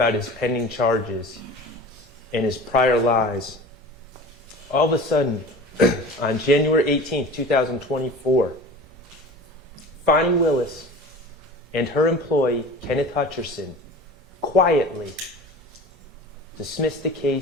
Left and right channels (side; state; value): both; normal; correlation 0.38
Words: his pending charges and his prior lies, all of a sudden, on January 18th, 2024, Fonnie Willis and her employee, Kenneth Hutcherson, quietly dismissed the